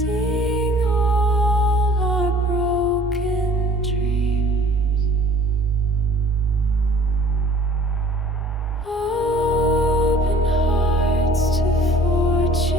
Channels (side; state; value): both; normal; correlation 0.52